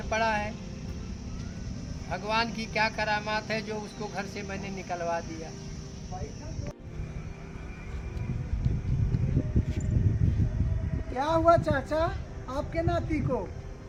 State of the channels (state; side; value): identical; both; correlation 1.00